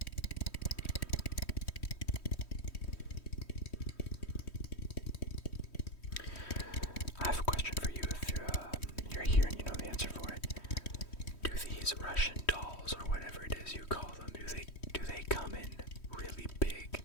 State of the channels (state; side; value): late; right; 3.1 ms